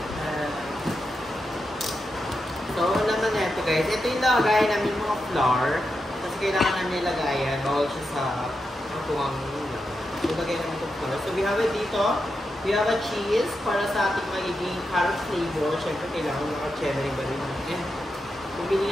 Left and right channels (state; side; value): normal; both; correlation 0.87